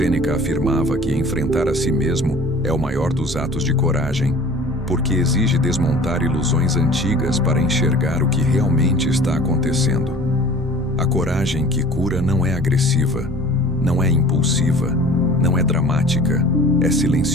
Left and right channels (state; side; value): normal; both; correlation 0.45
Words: afirmava que enfrentar a si mesmo é o maior dos atos de coragem, porque exige desmontar ilusões antigas para enxergar o que realmente está acontecendo. A coragem que cura não é agressiva, não é impulsiva, não é dramática, é